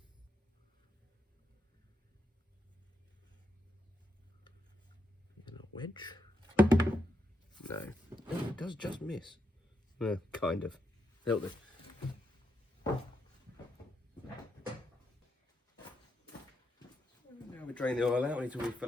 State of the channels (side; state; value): both; normal; correlation 0.82